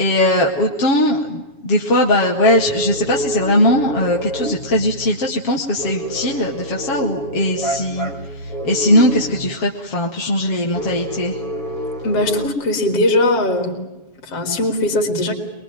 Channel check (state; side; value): late; right; 7.2 ms